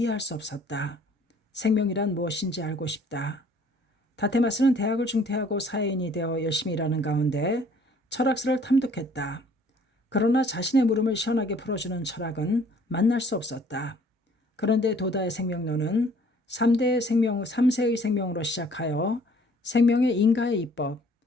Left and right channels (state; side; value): normal; both; correlation 0.57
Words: 수 없었다. 생명이란 무엇인지 알고 싶다. 다테마스는 대학을 중퇴하고 사회인이 되어 열심히 일하는 가운데 철학서를 탐독했다. 그러나 자신의 물음을 시원하게 풀어주는 철학은 만날 수 없었다. 그런데 도다의 생명론은 3세의 생명으로 시작하여 생명의 인가의 이법,